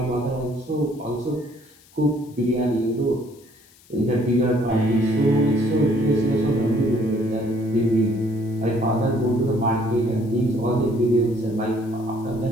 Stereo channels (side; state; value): left; noise; hiss, 28 dB below the sound